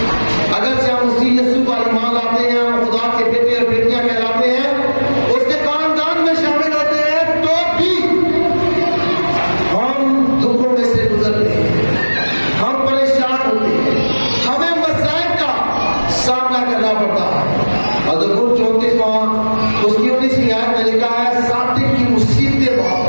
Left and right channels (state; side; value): inverted; both; correlation -1.00